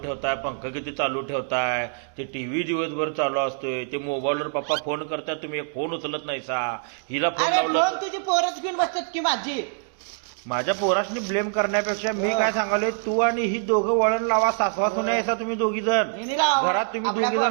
ठेवताय, पंखा किती चालू ठेवताय, ते टीव्ही दिवसभर चालू असतोय, ते मोबाईलवर पप्पा फोन करताय, तुम्ही एक फोन उचलत नाही सा. हिला फोन अरे लावला फोन तुझी पोरच घेऊन बसतात की माझी. माझ्या पोरासनी ब्लेम करण्यापेक्षा मी काय सांगालोय, तू आणि ही दोघं वळण लावा, सासवा सुना याचा तुम्ही दोघी जण हिने लावा. घरात तुम्ही आपल्या दोघी जण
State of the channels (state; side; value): silent; left; digital silence